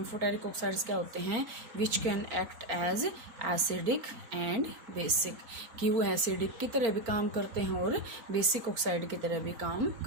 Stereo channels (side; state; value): left; late; 4.4 ms